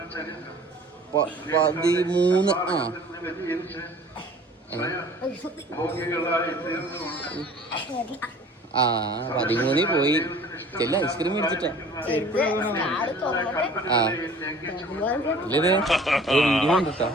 13. ആ 13 പോയി. ചെല്ല ഐസ്ക്രീം മേടിച്ചിട്ടാ. ആ ഇല്ലേ വീഡിയോ കണ്ടിട്ടാ.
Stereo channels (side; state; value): both; normal; correlation 0.48